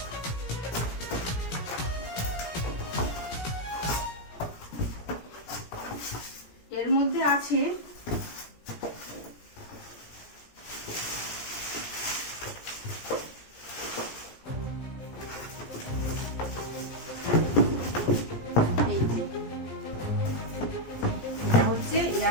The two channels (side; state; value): right; late; 17 ms